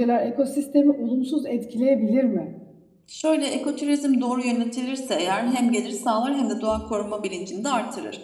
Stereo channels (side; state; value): both; identical; correlation 1.00